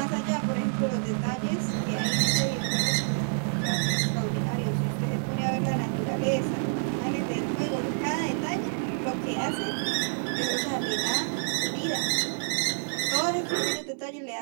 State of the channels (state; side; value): silent; left; 59 dB below the other